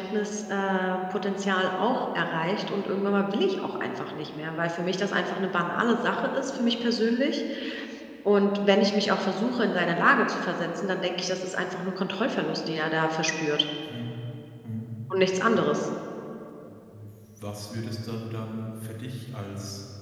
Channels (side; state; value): both; identical; correlation 1.00